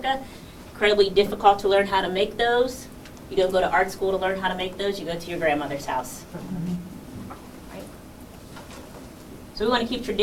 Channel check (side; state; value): both; identical; correlation 1.00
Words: Incredibly difficult to learn how to make those. You don't go to art school to learn how to make those, you go to your grandmother's house. So we want to keep